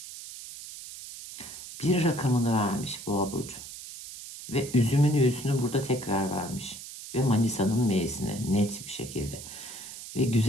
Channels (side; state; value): right; noise; hiss, 12 dB below the sound